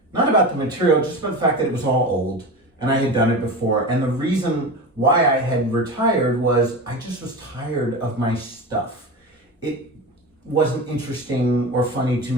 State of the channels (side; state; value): both; normal; correlation 0.27